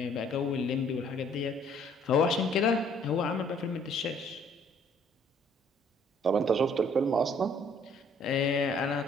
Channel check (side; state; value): both; normal; correlation 0.61